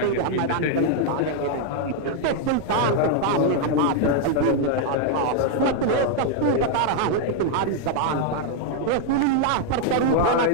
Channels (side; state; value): both; different; correlation 0.00